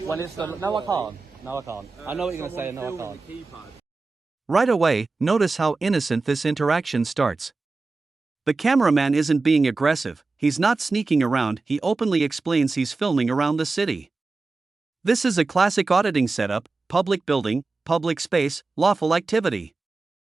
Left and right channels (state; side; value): quieter; left; 3.8 dB